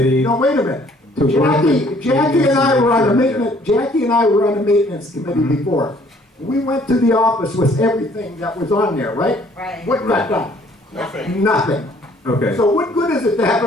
no, wait a minute. to work with. Jackie and I were on the Make sure- maintenance, Jackie and I were on the maintenance committee before. We went to the office with everything that was on there, right? Right. What got done? Nothing. Nothing. Okay. So what good is it to have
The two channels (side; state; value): both; normal; correlation 0.60